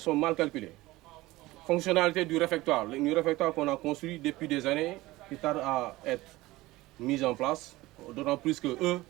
sont mal calculées. Fonctionnalité du réfectoire. Le réfectoire qu'on a construit depuis des années, qui tarde à être mis en place, d'autant plus que eux,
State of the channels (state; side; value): quieter; left; 18.9 dB